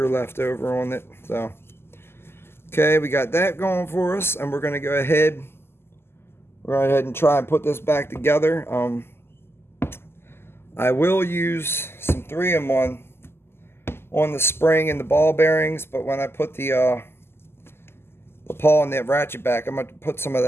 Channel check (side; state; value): right; late; 0.12 ms